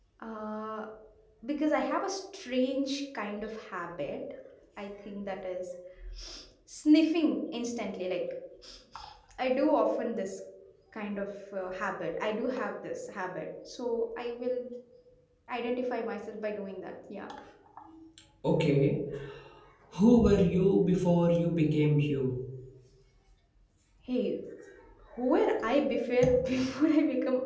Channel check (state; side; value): identical; both; correlation 1.00